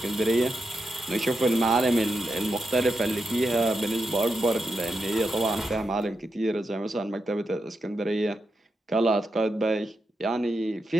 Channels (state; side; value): normal; both; correlation 0.86